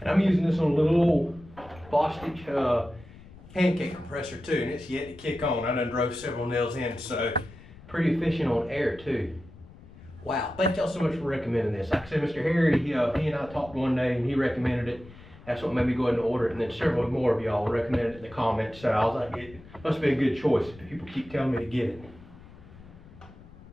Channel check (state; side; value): noise; left; rumble, 20 dB below the sound